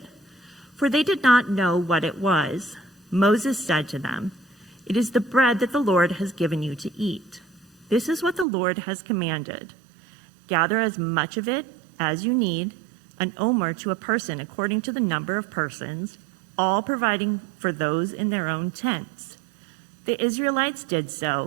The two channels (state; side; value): drops out; left; at 8.5 s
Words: For they did not know what it was. Moses said to them, "It is the bread that the Lord has given you to eat. This is what the Lord has commanded. Gather as much of it as you need, an omer to a person according to the number of persons, all providing for those in their own tents." The Israelites did